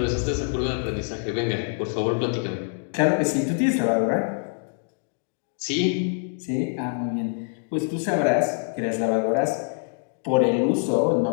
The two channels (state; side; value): silent; right; 59 dB below the other